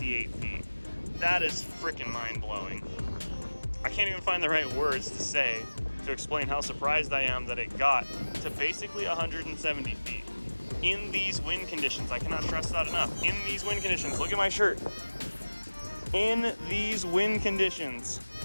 feet. That is freaking mind-blowing. I can't even find the right words to say to explain how surprised I am that it got to basically 170 feet. In these wind conditions, I cannot stress that enough. In these wind conditions, look at my shirt. In these wind conditions.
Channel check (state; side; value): inverted; both; correlation -1.00